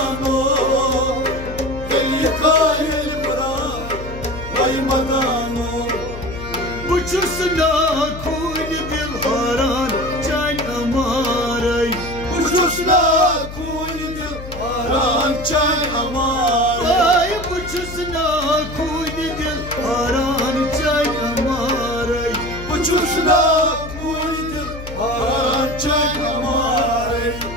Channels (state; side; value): noise; left; hum, 11 dB below the sound